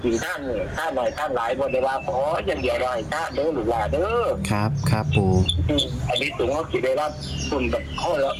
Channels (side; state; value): both; identical; correlation 1.00